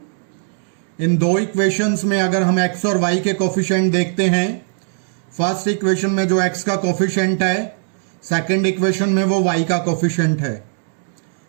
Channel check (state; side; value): silent; left; 66 dB below the other